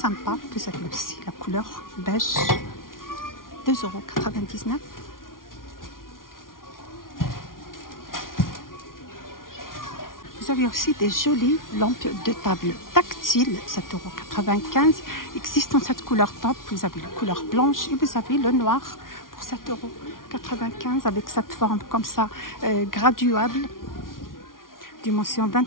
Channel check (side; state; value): right; late; 0.90 ms